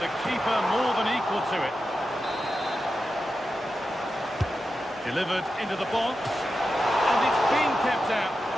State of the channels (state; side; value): normal; both; correlation 0.90